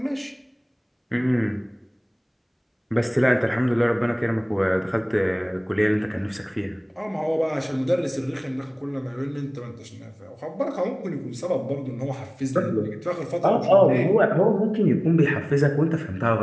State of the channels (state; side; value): identical; both; correlation 1.00